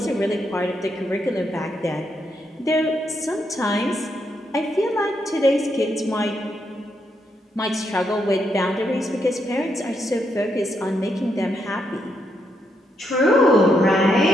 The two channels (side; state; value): both; normal; correlation 0.79